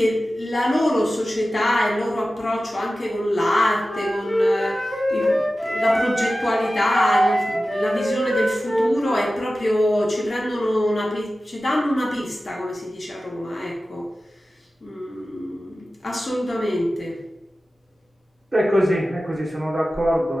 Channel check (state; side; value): normal; both; correlation 0.95